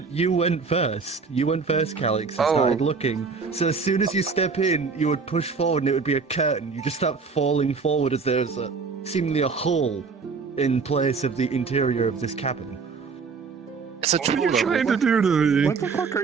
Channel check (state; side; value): quieter; left; 4.9 dB